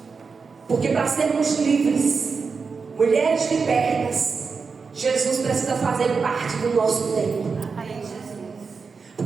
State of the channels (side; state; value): left; quieter; 5.1 dB